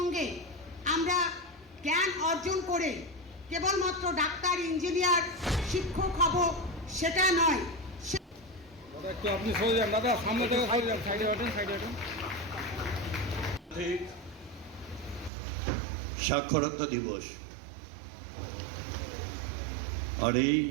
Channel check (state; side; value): drops out; left; at 15.3 s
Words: আমরা জ্ঞান অর্জন করে কেবলমাত্র ডাক্তার, ইঞ্জিনিয়ার, শিক্ষক হব সেটা নয়। দাদা একটু আপনি সরে যান, দাদা সামনে থেকে সরে যান, সাইডে ওঠেন, সাইডে ওঠেন। সাক্ষরতা দিবস, আর এই